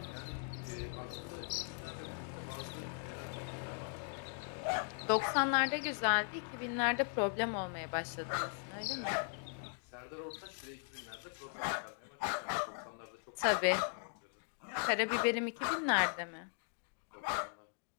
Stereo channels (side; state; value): right; silent; 52 dB below the other